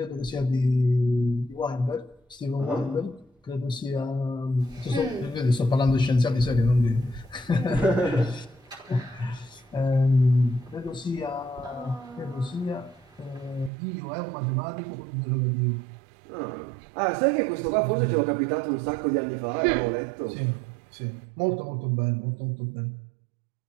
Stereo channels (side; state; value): left; drops out; at 13.7 s